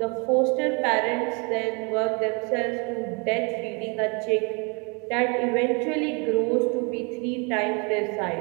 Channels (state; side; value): quieter; left; 32.6 dB